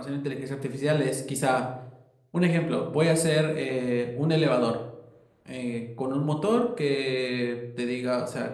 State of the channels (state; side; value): identical; both; correlation 1.00